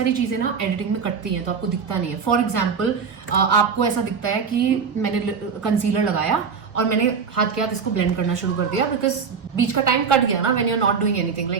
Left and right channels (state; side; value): quieter; left; 6.0 dB